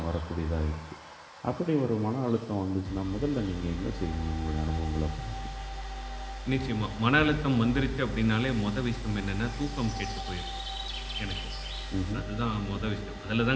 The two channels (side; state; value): both; identical; correlation 1.00